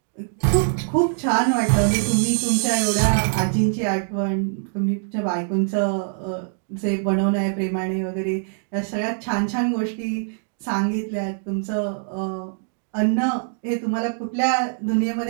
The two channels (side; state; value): left; silent; digital silence